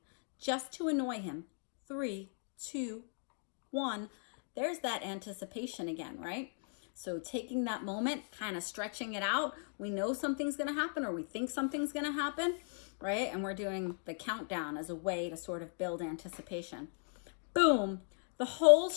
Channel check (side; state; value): right; silent; 53 dB below the other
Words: just to annoy him. 3, 2, 1. There's that anticipation again, right? So taking that moment, kind of stretching it out. We know something's going to happen, or we think something's going to happen, right? And we're doing the countdown as a way to sort of build anticipation. Boom! The whole